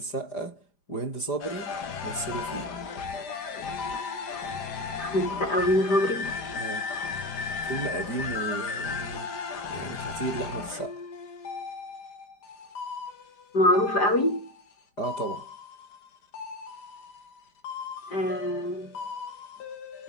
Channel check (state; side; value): late; right; 5.0 ms